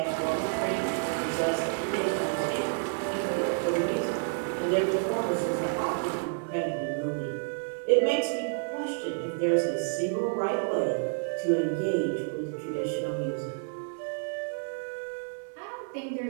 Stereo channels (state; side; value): silent; left; digital silence